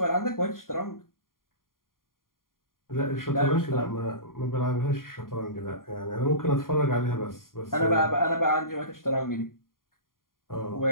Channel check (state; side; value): late; right; 0.91 ms